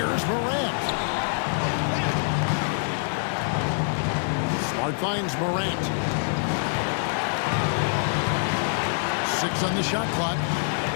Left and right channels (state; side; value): silent; right; 61 dB below the other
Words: Morant. Smart finds Morant. 6 on the shot clock.